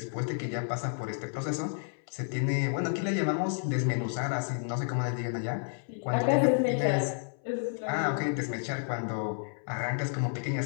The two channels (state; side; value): silent; right; 57 dB below the other